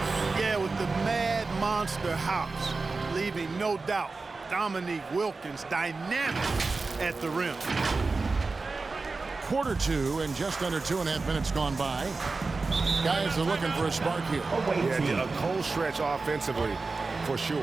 Yeah, with the mad monster hops, leaving no doubt Dominique Wilkins dynamic at the rim. Quarter 2 and just under 2.5 minutes gone by. Guys are looking for a spark here. Yeah, a cold stretch offensively for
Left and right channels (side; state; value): left; quieter; 3.9 dB